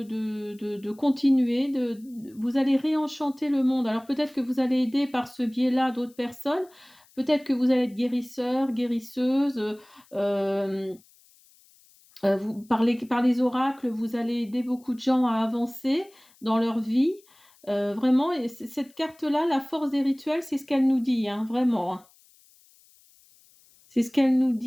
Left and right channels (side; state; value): left; noise; hiss, 29 dB below the sound